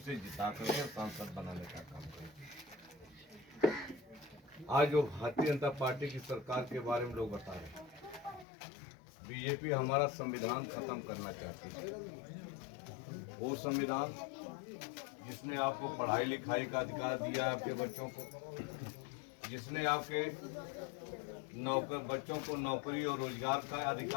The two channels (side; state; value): right; drops out; at 8.5 s